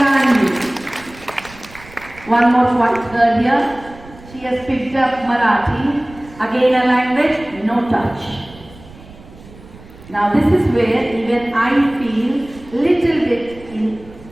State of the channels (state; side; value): noise; right; rumble, 20 dB below the sound